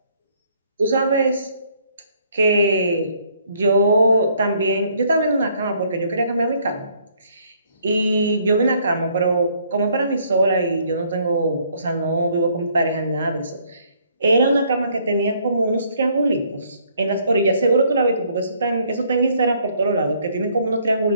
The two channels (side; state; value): both; inverted; correlation -0.65